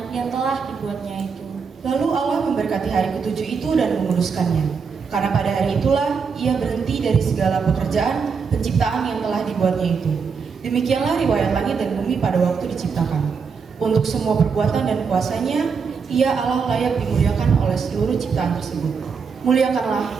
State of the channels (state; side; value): quieter; left; 5.7 dB